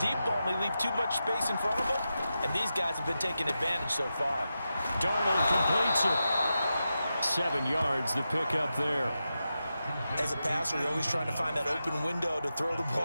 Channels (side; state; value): both; inverted; correlation -0.90